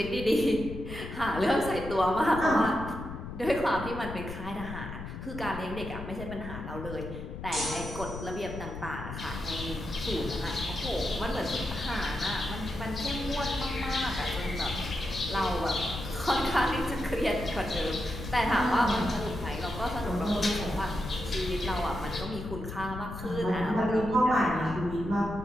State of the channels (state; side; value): noise; left; rumble, 8 dB below the sound